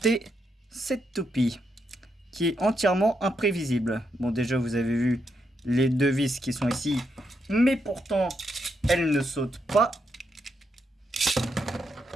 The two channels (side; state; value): both; normal; correlation 0.81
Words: cette toupie qui est entièrement imprévisible. Bon, déjà vous avez vu les deux vis qui sont ici, mais pourtant elle ne saute pas.